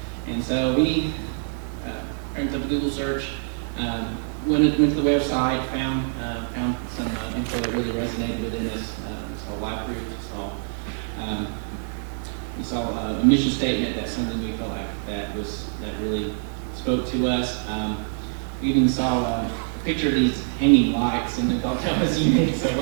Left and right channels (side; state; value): left; silent; 62 dB below the other